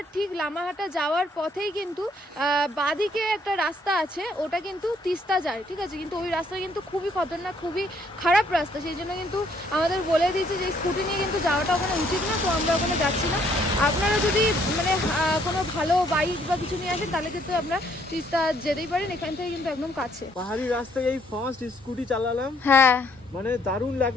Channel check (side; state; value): both; normal; correlation 0.67